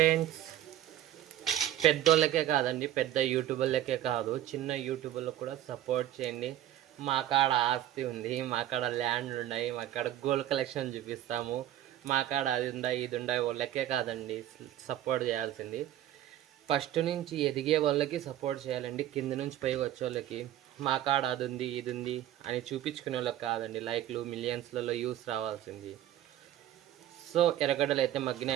పెద్దోళ్ళకే కాదండి, పెద్ద యూట్యూబర్లకే కాదు, చిన్న యూట్యూబర్లకు కూడా సపోర్ట్ చేయండి. మా కాడ ఆస్తి ఉంది, మా కాడ ల్యాండ్ ఉన్నాయి, మా కాడ గోల్డ్ కలెక్షన్ చూపిస్తాము, మా కాడ అది ఉందా ఇది ఉందా. వాళ్ళకే కాదండి సపోర్ట్ చేయాల్సింది, ఫస్ట్ నుంచి ఎదిగే వాళ్ళకి సపోర్ట్ చేయాలండి. కింద నుంచి పైకి వచ్చే వాళ్ళకి మా కాడ అది ఉంది ఇది ఉంది అని చూపించుకునే వాళ్ళకి కాదండి లైక్లు మిలియన్స్లలో యూస్ రావాల్సింది. సో ఎర్రగడ్డలు అయితే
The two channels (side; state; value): left; quieter; 12.5 dB